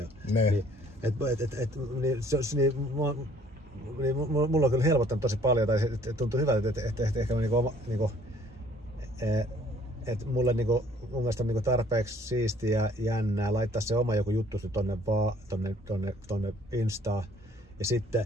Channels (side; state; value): both; normal; correlation 0.58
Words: Mulla on kyllä helpottanut tosi paljon tai tuntuu hyvältä, että ehkä että mulle niinku, mun mielestä on niinku tarpeeksi siistiä ja jännää laittaa se oma joku juttu tonne Instaan ja sitten